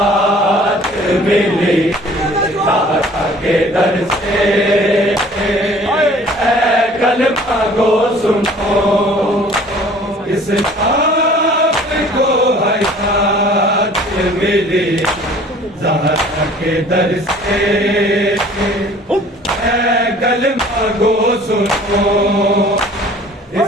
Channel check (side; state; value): both; normal; correlation 0.51